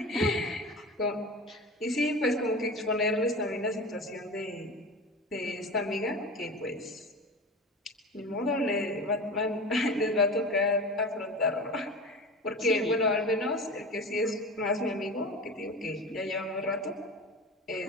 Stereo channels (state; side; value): normal; both; correlation 0.31